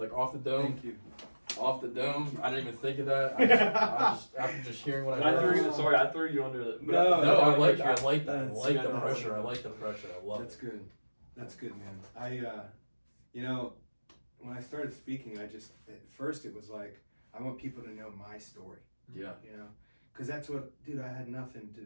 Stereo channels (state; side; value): inverted; both; correlation -1.00